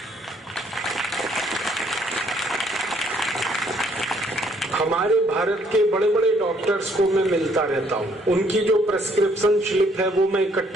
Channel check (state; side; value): normal; both; correlation 0.65